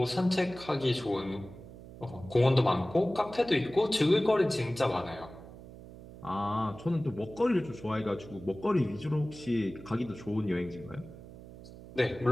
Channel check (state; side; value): noise; right; hum, 16 dB below the sound